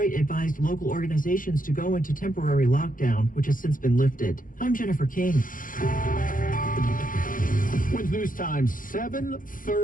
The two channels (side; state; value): right; late; 0.40 ms